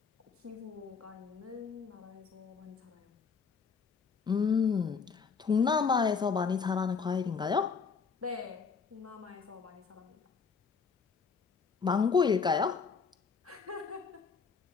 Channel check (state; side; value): quieter; right; 5.5 dB